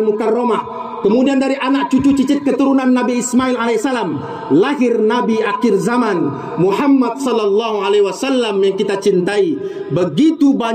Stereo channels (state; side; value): identical; both; correlation 1.00